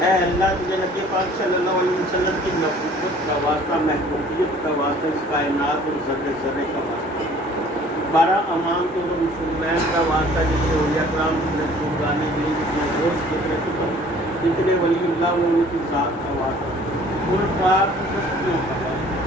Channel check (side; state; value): both; normal; correlation 0.53